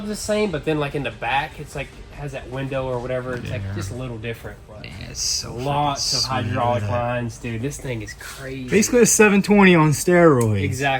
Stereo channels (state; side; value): identical; both; correlation 1.00